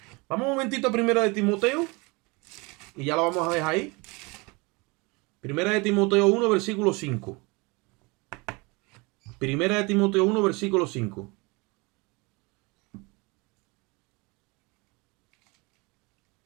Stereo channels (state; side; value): quieter; left; 26.8 dB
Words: Vamos un momentito a Primera de Timoteo. Y ya lo vamos a dejar ahí. Primera de Timoteo 1, versículo 5. Primera de Timoteo 1, versículo 5.